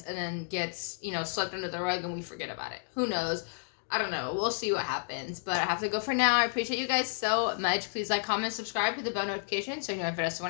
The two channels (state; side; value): silent; right; digital silence